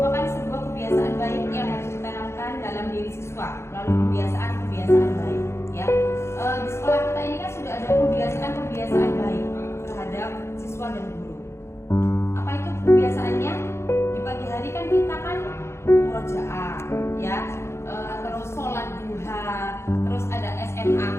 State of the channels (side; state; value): right; late; 0.13 ms